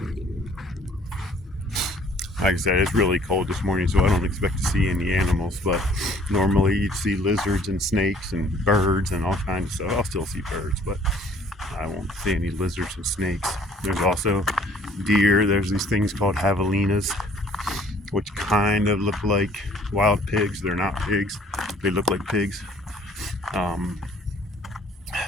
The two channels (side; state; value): both; normal; correlation 0.57